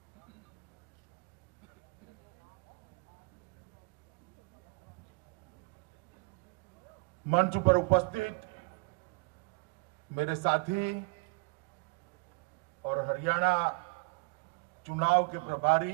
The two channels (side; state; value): left; quieter; 28.0 dB